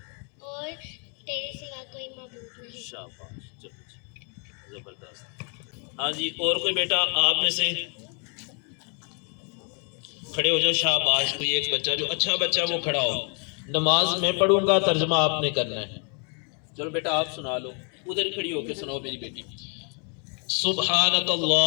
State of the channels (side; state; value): right; quieter; 38.5 dB